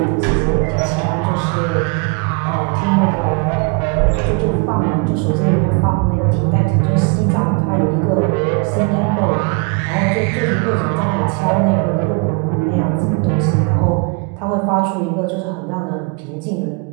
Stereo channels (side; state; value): left; quieter; 31.8 dB